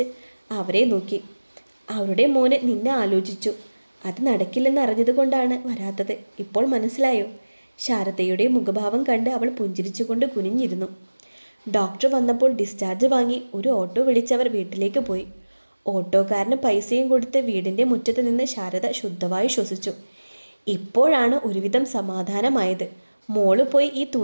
അവരെ നോക്കി. അവരുടെ മോന് നിന്നെ ആലോചിച്ചു, അത് നടക്കില്ലെന്ന് അറിഞ്ഞതുകൊണ്ടാണ് വരാത്തത്. ഇപ്പോൾ മനസ്സിലായോ? ശാരദയുടെ മുഖഭാവം കണ്ട് അവൾ പുഞ്ചിരിച്ചുകൊണ്ട് കുനിഞ്ഞിരുന്നു. ഡോക്ടർ വന്നപ്പോൾ ഡിസ്ചാർജ് വാങ്ങി ഒരു ഓട്ടോ വിളിച്ചവർ വീട്ടിലേക്ക് പോയി. ഓട്ടോക്കാരന് പൈസയും കൊടുത്ത് വീടിൻ്റെ മുറ്റത്ത് നിന്ന് ശാരദ ശുദ്ധമായി ശ്വസിച്ചു. ഇപ്പോഴാണ് ഒരുവിധം സമാധാനമായത്. മോള് പോയി ഈ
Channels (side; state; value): both; inverted; correlation -1.00